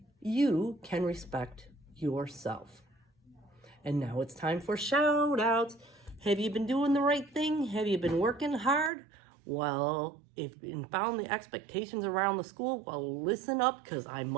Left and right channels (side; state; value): left; drops out; at 8.9 s